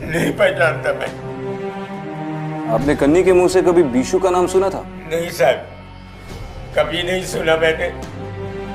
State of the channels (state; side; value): identical; both; correlation 1.00